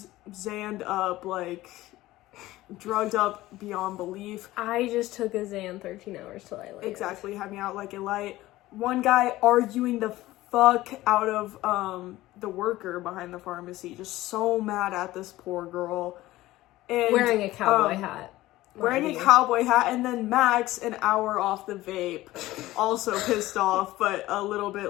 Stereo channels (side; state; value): right; quieter; 16.9 dB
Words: zanned up, like... drugged up beyond belief. I just took a Xan 13 hours till I landed. Exactly, had me out like a light. One guy arguing the fuck out of the worker behind the pharmacy, just so mad at this poor girl. And Wearing a cowboy hat. Wearing Mind a you. cowboy hat, and then Max, an hour off the vape, also pissed off, but a little